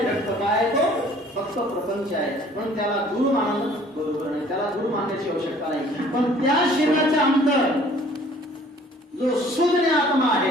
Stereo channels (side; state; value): both; normal; correlation 0.54